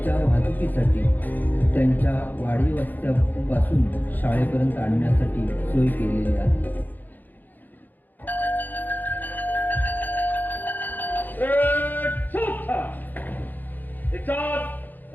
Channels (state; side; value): late; right; 0.086 ms